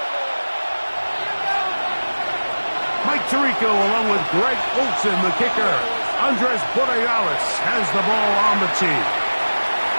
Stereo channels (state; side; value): inverted; both; correlation -1.00